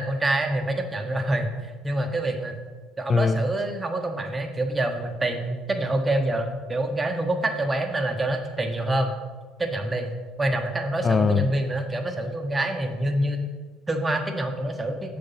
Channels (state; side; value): normal; both; correlation 0.82